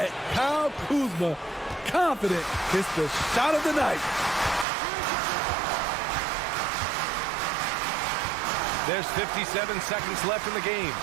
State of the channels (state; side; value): drops out; left; at 4.7 s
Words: Kyle Kuzma. Confident. It's the shot of the night. There's 57 seconds left in the game.